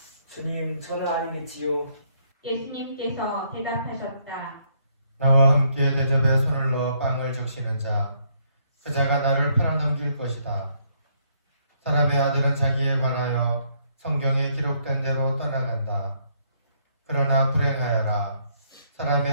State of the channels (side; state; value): both; inverted; correlation -0.70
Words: 주님, 저는 아니겠지요. 예수님께서 대답하셨다. 나와 함께 대접에 손을 넣어 빵을 적시는 자, 그 자가 나를 팔아넘길 것이다. 사람의 아들은 자기에 관하여 성경에 기록된 대로 떠나간다. 그러나 불행하여라.